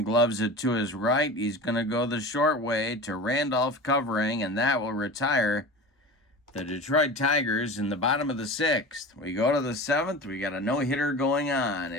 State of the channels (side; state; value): both; normal; correlation 0.33